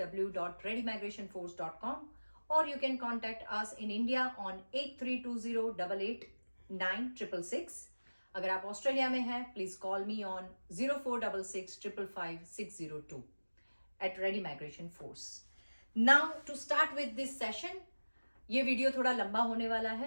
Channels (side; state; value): both; inverted; correlation -1.00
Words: or you can contact us in India on 8320889666. अगर आप ऑस्ट्रेलिया में हैं, please call me on 0466555602 at Ready Migration Force. Now to start with this session, ये video थोड़ा लंबा होने वाला